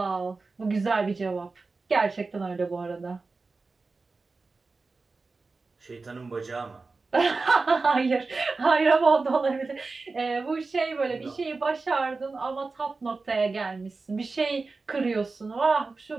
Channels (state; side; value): quieter; left; 3.9 dB